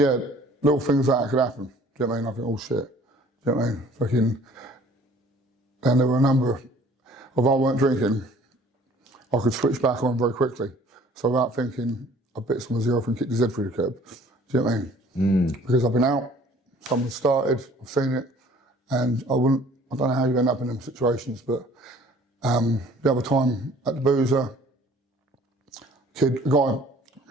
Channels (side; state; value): both; normal; correlation 0.53